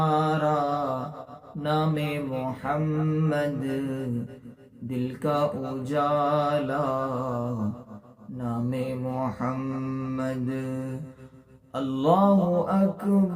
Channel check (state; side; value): identical; both; correlation 1.00